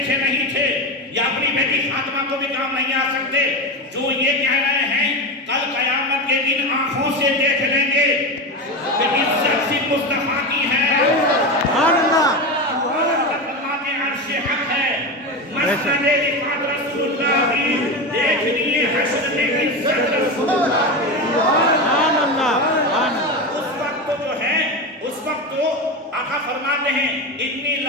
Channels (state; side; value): normal; both; correlation 0.20